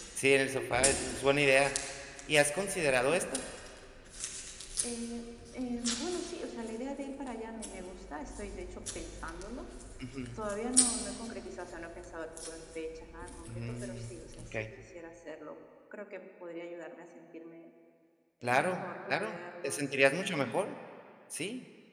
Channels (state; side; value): identical; both; correlation 1.00